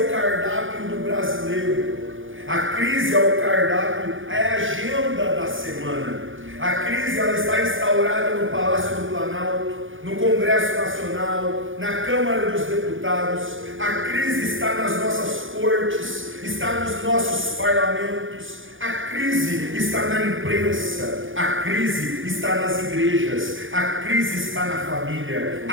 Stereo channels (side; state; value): left; late; 0.58 ms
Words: cardápio do brasileiro. A crise é o cardápio, é a agenda da semana. A crise, ela está instaurada no Palácio do Planalto, no Congresso Nacional, na Câmara dos Deputados. A crise está nas nossas cortes, está nos nossos parlamentos. A crise está na imprensa, a crise está nas igrejas, a crise está na família,